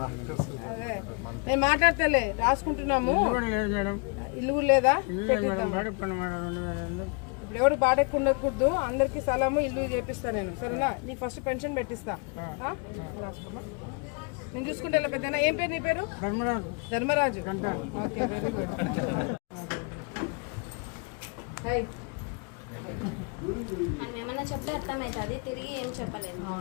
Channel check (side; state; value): right; quieter; 33.9 dB